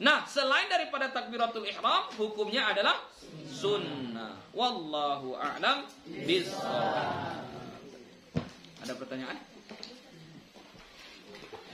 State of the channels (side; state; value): both; identical; correlation 1.00